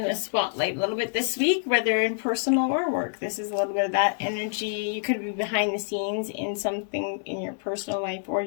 the spotlight a little bit this week, whether in personal or work. This is a little bit of that energy. You could be behind the scenes in something in your personal life or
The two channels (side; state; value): right; silent; digital silence